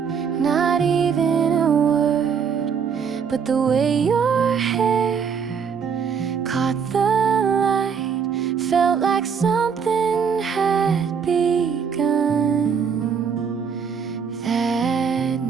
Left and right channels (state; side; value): quieter; left; 6.6 dB